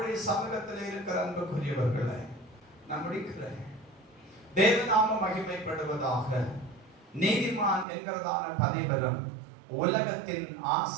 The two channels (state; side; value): drops out; left; at 7.9 s